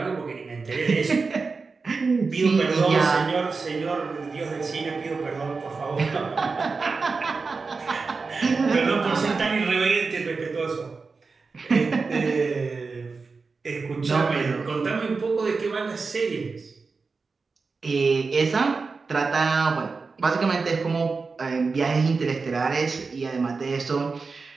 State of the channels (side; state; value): left; quieter; 4.4 dB